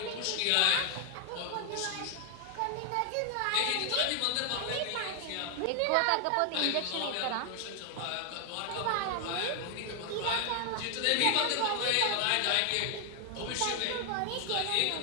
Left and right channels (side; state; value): both; different; correlation 0.00